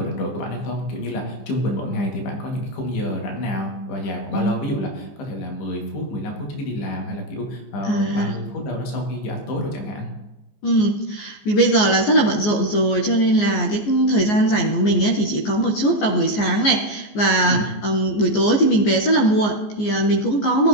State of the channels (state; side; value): late; right; 14 ms